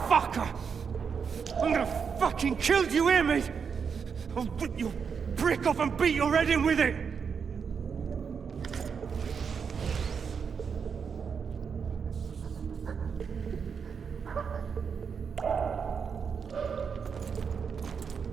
I'm gonna fucking kill you, hear me? I'll rip your brick off and beat your head in with it!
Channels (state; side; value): quieter; left; 6.3 dB